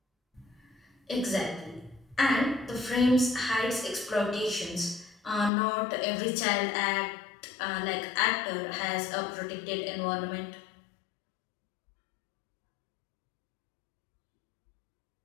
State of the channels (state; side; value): drops out; right; at 5.5 s